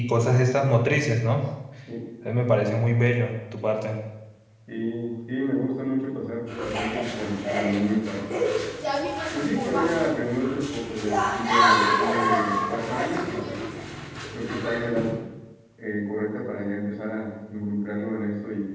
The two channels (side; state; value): both; identical; correlation 1.00